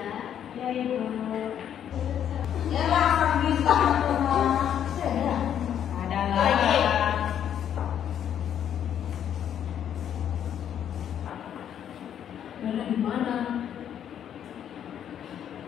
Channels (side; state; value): right; quieter; 9.5 dB